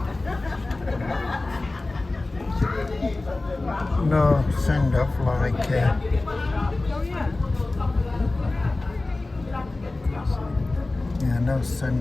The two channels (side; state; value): right; quieter; 3.1 dB